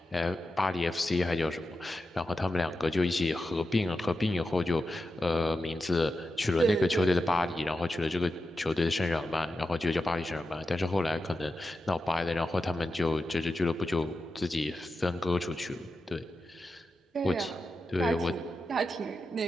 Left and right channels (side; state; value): both; normal; correlation 0.90